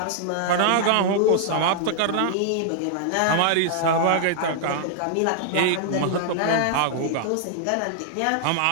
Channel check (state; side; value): different; both; correlation -0.01